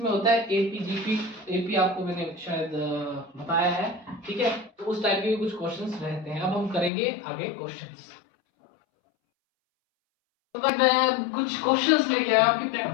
होता है एपी जीपी। एपी आपको मैंने शायद बताया है, ठीक है। तो उस टाइप के भी कुछ क्वेश्चंस रहते हैं। अब हम करेंगे आगे क्वेश्चंस। तो गाइस मैं कुछ क्वेश्चंस लेके आया आपकी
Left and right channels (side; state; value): right; drops out; at 6.9 s